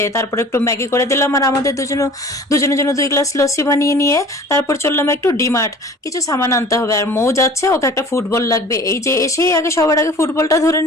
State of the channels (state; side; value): normal; both; correlation 0.45